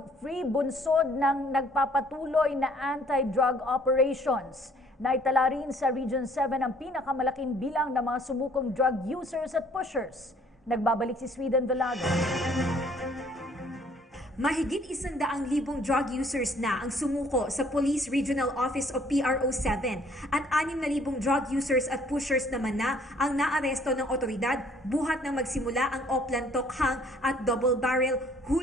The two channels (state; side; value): normal; both; correlation 0.59